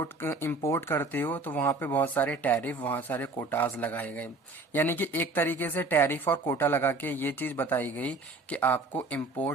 इंपोर्ट करते हो तो वहां पे बहुत सारे टैरिफ, बहुत सारे कोटाज लगाए गए। यानी कि एक तरीके से टैरिफ और कोटा लगा के ये चीज बताई गई कि आपको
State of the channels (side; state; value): left; quieter; 3.2 dB